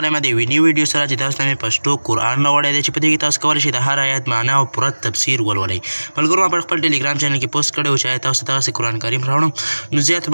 یم د یوې نوې ویډیو سره چې تاسو ته مې پښتو قرآن راوړی دی چې په دې کې تاسو کولی شئ د هر آیت معنا او پوره تفسیر ولولئ. ملګرو ما په خپل ټلیګرام چینل کې پوسټ کړی و چې آیا تاسو ته دغسې قرآن کریم راوړم، نو زیات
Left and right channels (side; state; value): both; inverted; correlation -1.00